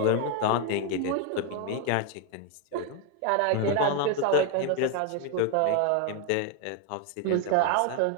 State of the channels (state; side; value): different; both; correlation 0.01